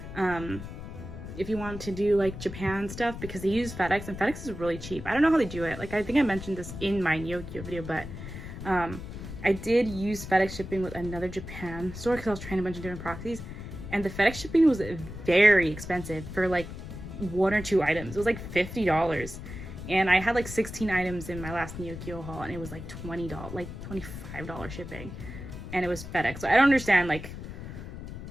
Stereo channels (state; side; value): noise; left; rumble, 10 dB below the sound